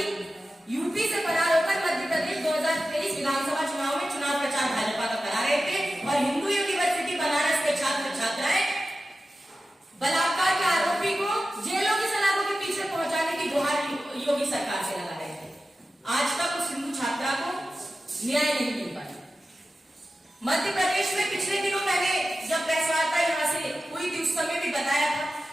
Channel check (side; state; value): both; normal; correlation 0.94